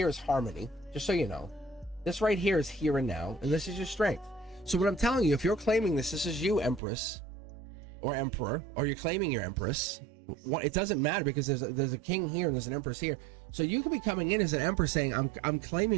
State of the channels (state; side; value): drops out; left; at 6.8 s